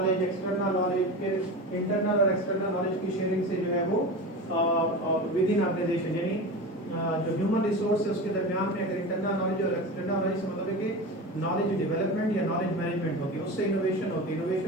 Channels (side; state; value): both; normal; correlation 0.28